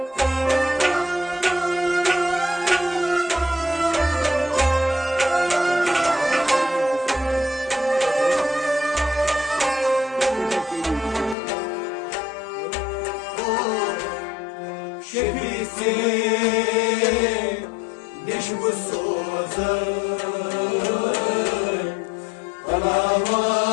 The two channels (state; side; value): drops out; right; at 11.4 s